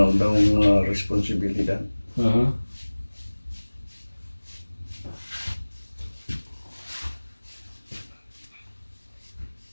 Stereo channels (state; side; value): inverted; both; correlation -1.00